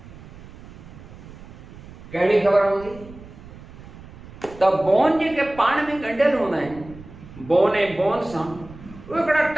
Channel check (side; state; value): right; noise; rumble, 17 dB below the sound